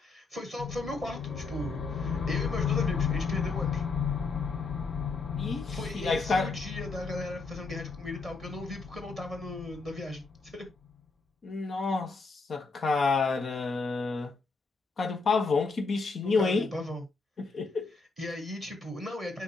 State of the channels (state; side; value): quieter; right; 4.1 dB